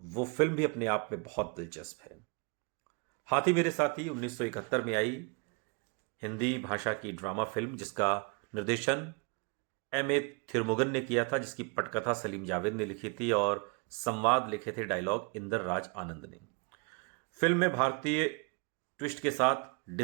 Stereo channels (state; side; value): quieter; left; 33.4 dB